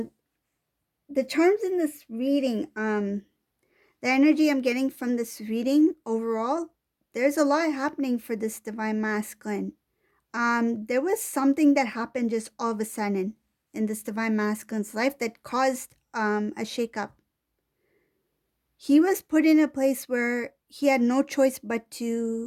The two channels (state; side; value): identical; both; correlation 1.00